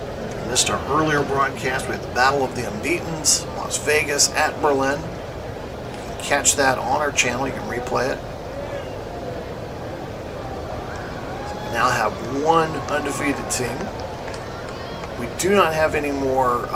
missed our earlier broadcast, we had the Battle of the Unbeatens, Las Vegas at Berlin. You can catch that on our channel. You can replay it. So we now have one undefeated team. We do not have any more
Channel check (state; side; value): identical; both; correlation 1.00